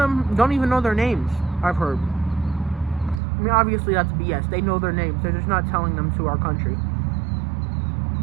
don't even know their names, I've heard. I mean, obviously that's BS. They know their names. They're just not telling them to our country.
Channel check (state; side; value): drops out; left; at 3.2 s